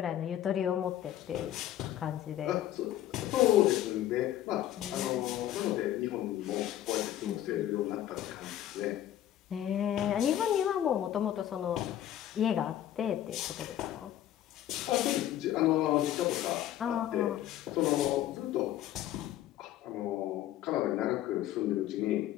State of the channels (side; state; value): right; quieter; 12.3 dB